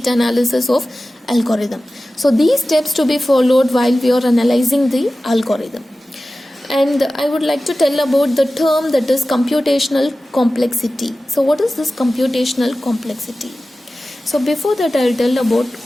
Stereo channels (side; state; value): both; normal; correlation 0.95